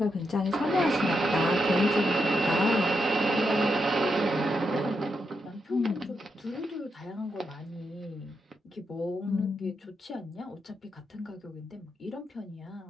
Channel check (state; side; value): normal; both; correlation 0.83